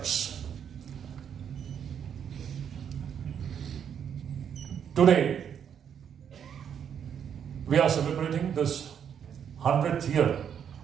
Today, we are celebrating this 100th year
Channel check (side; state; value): left; quieter; 8.3 dB